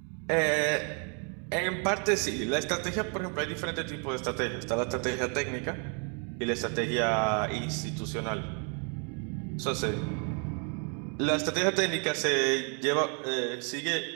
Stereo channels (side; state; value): left; quieter; 38.4 dB